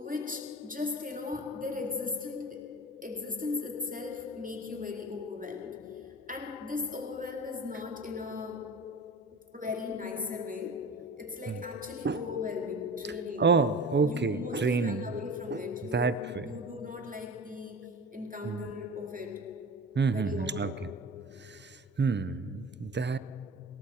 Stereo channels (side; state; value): both; normal; correlation 0.35